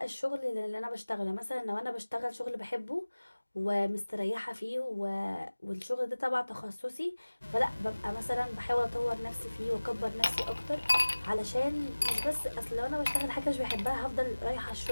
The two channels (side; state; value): both; inverted; correlation -1.00